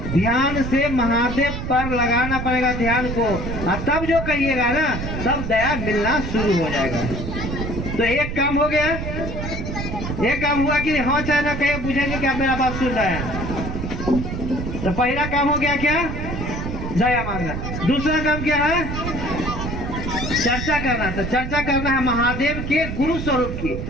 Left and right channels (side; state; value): right; noise; rumble, 5 dB below the sound